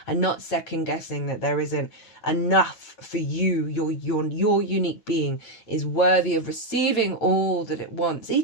And not second guessing that there isn't enough for you. Your unique being is worthy of receiving all that it wants.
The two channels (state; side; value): late; right; 8.9 ms